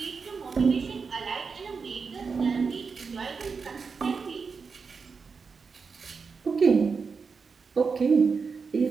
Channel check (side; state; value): left; quieter; 5.2 dB